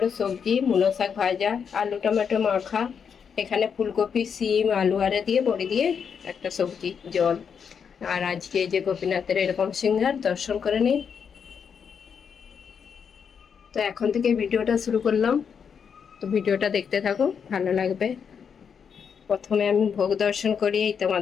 সবজি, মূলো শাক ভাজা, আলু টমেটো মাখা, এখানে ফুলকপি, সিম, আলু আরে দিয়ে বড়ি দিয়ে একটা সবজি, জল। আর আজকে যে গোপীনাথের এরকম সিংহার দর্শন করে নিই। তো এখন থেকে ভিডিওটা শুরু করলাম, তো ভিডিওটা দেখতে থাকো, ভালো লাগবে। প্রথমে আমি ভোগ দর্শন করি,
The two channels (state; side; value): quieter; right; 6.9 dB